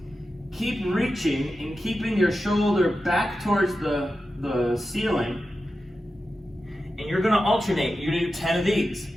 Keep reaching and keeping your shoulder back towards the ceiling. And you're gonna alternate. You're gonna do 10 of these.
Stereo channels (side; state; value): both; normal; correlation 0.92